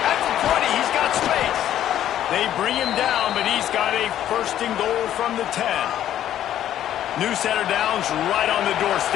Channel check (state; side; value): quieter; right; 11.5 dB